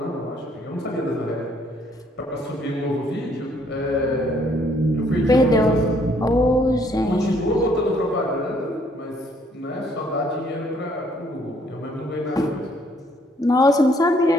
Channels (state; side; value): normal; both; correlation 0.65